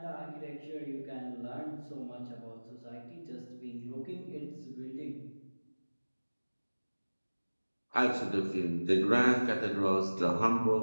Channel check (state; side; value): inverted; both; correlation -1.00